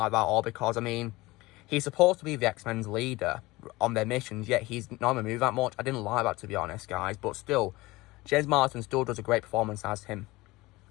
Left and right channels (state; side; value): quieter; right; 20.7 dB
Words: that at all because, I mean, he's supposed to be the X-Men's leader on their missions, yet he's not going to move that much. I didn't like that, to be honest, guys, but still, James Marsden still does a great performance as him.